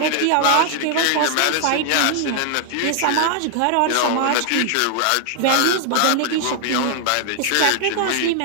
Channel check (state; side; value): different; both; correlation 0.00